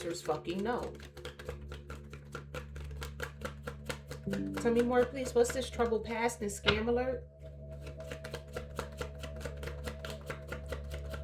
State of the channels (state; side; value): identical; both; correlation 1.00